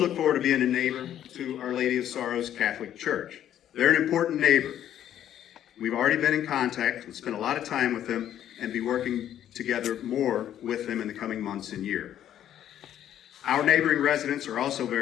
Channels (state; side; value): quieter; right; 10.9 dB